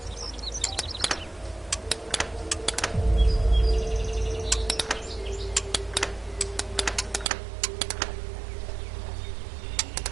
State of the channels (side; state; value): left; drops out; at 7.3 s